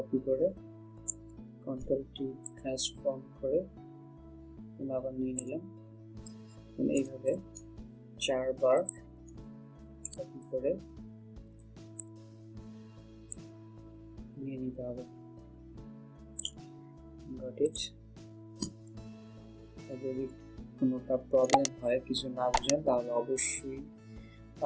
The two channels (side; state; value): both; identical; correlation 1.00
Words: করে কন্ট্রোল টি ট্রান্সফর্ম করে আবার নিয়ে নিলাম। এইভাবে 4 বার কপি করে নিয়ে নিতে হবে। Got it. যদি কোনোটা প্রবলেম হয়, কিছু না বুঝেন, তাহলে অবশ্যই